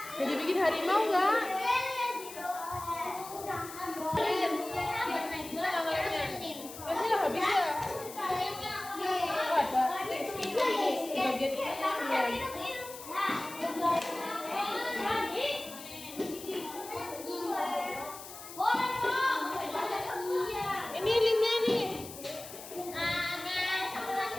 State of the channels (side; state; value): left; noise; hiss, 13 dB below the sound